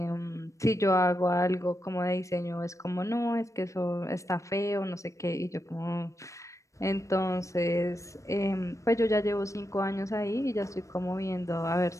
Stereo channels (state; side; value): late; right; 0.15 ms